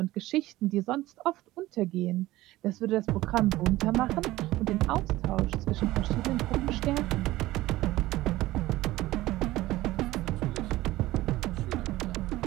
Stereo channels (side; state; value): left; quieter; 17.2 dB